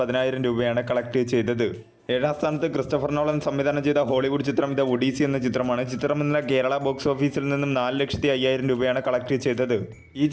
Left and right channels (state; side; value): identical; both; correlation 1.00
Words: രൂപയാണ് കളക്ട് ചെയ്തത്. 7ാം സ്ഥാനത്ത് ക്രിസ്റ്റഫർ നോളൻ സംവിധാനം ചെയ്ത ഹോളിവുഡ് ചിത്രം ദ ഒഡീസി എന്ന ചിത്രമാണ്. ചിത്രം ഇന്നലെ കേരള ബോക്സ് ഓഫീസിൽ നിന്നും 4,05,000 രൂപയാണ് കളക്ട് ചെയ്തത്. ഈ